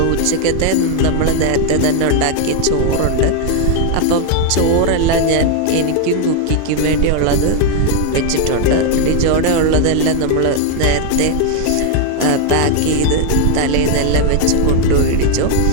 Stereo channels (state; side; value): different; both; correlation 0.01